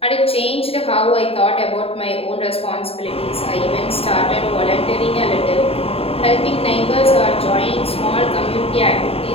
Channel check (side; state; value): right; late; 0.28 ms